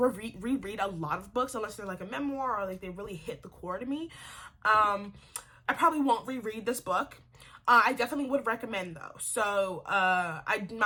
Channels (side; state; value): both; identical; correlation 1.00